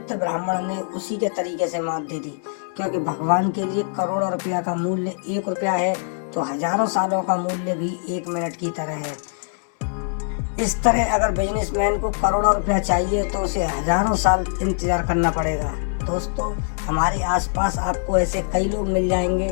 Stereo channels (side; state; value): right; silent; digital silence